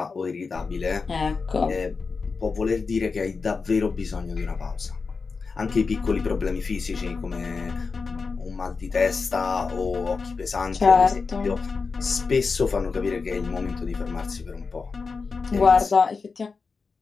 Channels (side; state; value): right; quieter; 4.7 dB